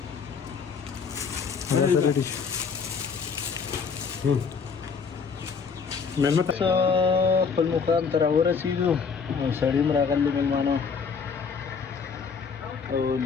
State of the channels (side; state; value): right; quieter; 5.7 dB